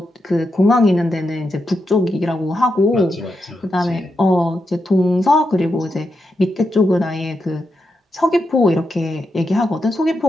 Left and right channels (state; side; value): normal; both; correlation 0.85